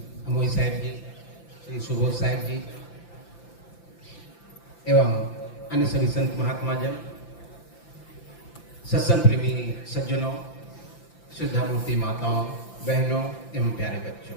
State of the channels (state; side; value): late; right; 5.9 ms